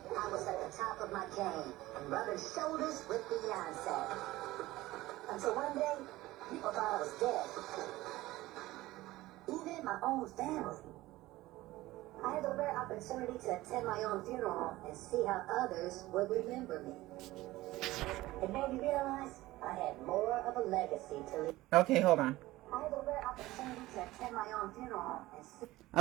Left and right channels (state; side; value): quieter; left; 17.7 dB